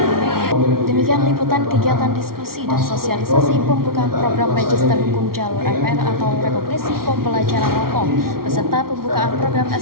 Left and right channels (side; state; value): left; late; 0.93 ms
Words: Demikian liputan kegiatan diskusi dan sosialisasi pembukaan program Magister Hukum Jalur RPL atau Rekognisi Pembelajaran Hukum beserta pembukaan program